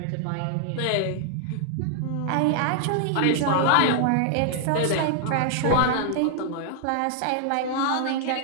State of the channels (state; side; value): different; both; correlation 0.00